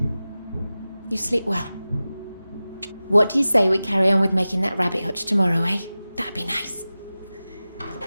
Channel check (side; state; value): both; inverted; correlation -0.96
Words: You sleep well. What do you say we carry on with making that rabbit hutch tomorrow, eh? That'd be nice.